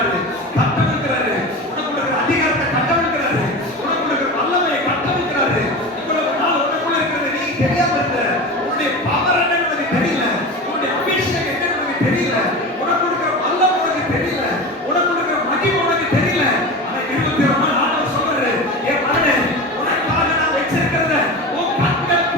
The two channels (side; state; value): both; normal; correlation 0.28